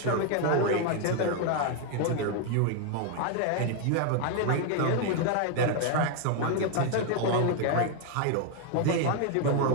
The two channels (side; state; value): both; different; correlation 0.01